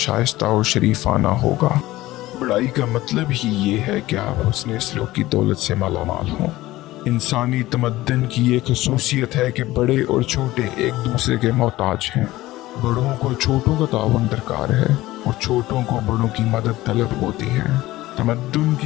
اور شریفانہ ہوگا۔ بڑائی کا مطلب ہی یہ ہے کہ آپ حسن سلوک کی دولت سے مالا مال ہوں۔ انسانی تمدن کی یہ خصوصیت ہے کہ بڑے اور چھوٹے ایک دوسرے کے محتاج ہیں۔ بڑوں کو چھوٹوں کا تعاون درکار ہے اور چھوٹوں کو بڑوں کی مدد طلب ہوتی ہے۔ تمدن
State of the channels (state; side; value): quieter; right; 17.3 dB